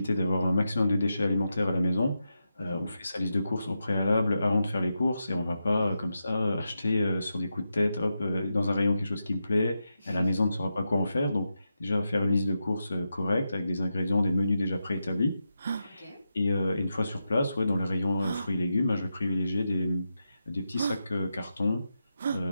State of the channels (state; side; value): inverted; both; correlation -0.88